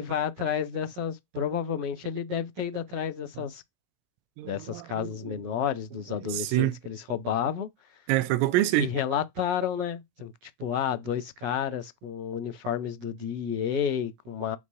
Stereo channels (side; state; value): left; late; 17 ms